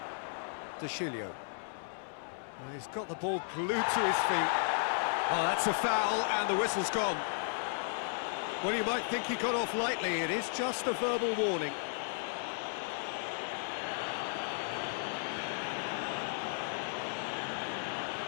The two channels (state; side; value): silent; right; 55 dB below the other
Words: Dushilio. Well, he's got the ball glued to his feet. Oh, that's a foul, and the whistle's gone. Well, you might think he got off lightly. It is just a verbal warning.